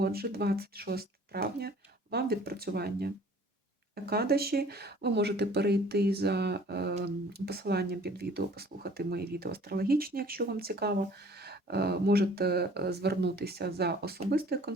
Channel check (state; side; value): normal; both; correlation 0.52